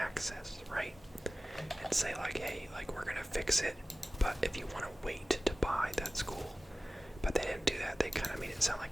right? And say like, hey, we're gonna fix it, but if you want to wait to buy, that's cool. But they didn't do that. They kind of made it sound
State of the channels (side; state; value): both; normal; correlation 0.96